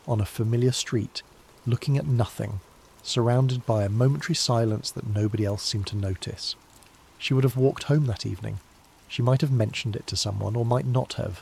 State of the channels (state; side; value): identical; both; correlation 1.00